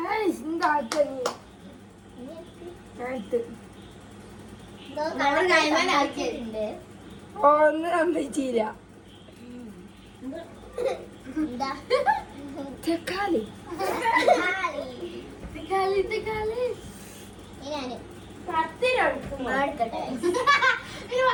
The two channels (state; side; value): identical; both; correlation 1.00